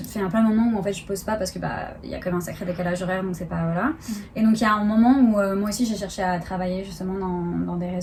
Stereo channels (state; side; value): identical; both; correlation 1.00